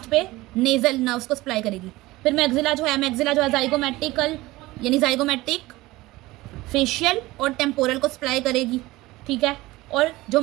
पे नेजल नर्व्स को सप्लाई करेगी। फिर मैक्सिला जो है जाइगोमैटिकल यानी जाइगोमैटिक फेशियल और टेम्पोरल को सप्लाई करेगी, ठीक है। और जो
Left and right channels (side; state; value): left; quieter; 19.2 dB